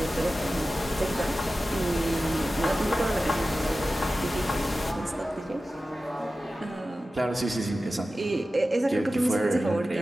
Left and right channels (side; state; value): both; normal; correlation 0.94